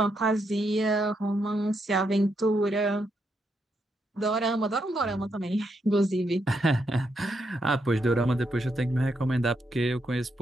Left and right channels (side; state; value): both; normal; correlation 0.80